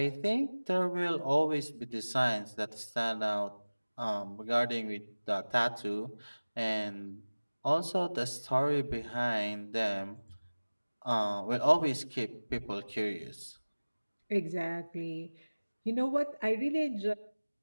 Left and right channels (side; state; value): both; inverted; correlation -1.00